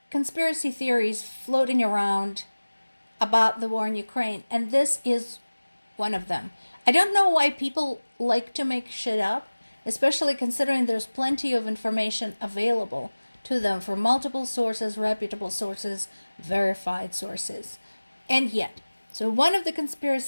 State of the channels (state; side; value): inverted; both; correlation -1.00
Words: conspiracy theories floating around about the war in Ukraine, and this is one of them. I don't know why people like to make shit up, especially considering there's plenty of information available to them from multiple sources, reputable sources, verified sources. And yet, so one of the